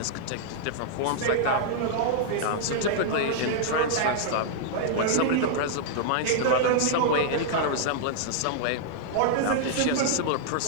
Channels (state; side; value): different; both; correlation -0.01